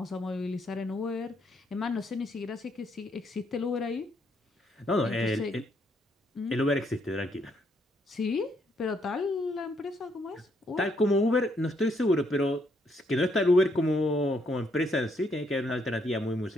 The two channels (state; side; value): normal; both; correlation 0.73